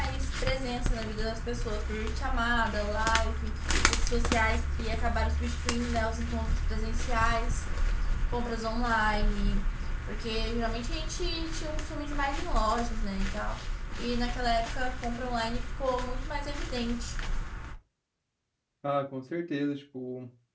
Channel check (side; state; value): both; identical; correlation 1.00